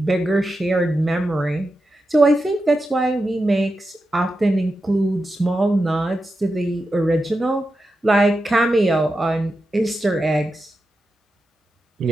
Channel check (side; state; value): both; normal; correlation 0.89